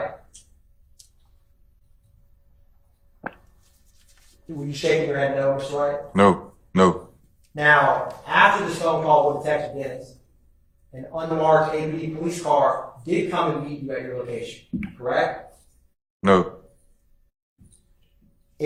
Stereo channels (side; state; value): both; identical; correlation 1.00